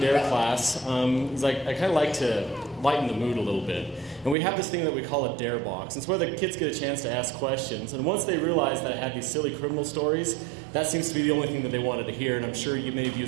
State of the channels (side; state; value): left; drops out; at 4.4 s